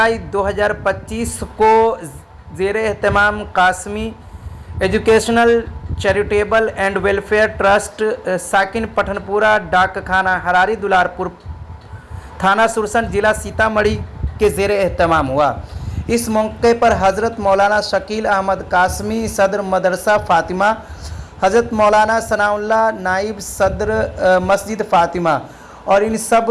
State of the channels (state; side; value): identical; both; correlation 1.00